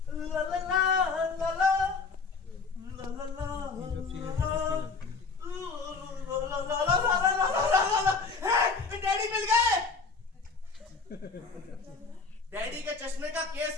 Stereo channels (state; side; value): quieter; right; 4.5 dB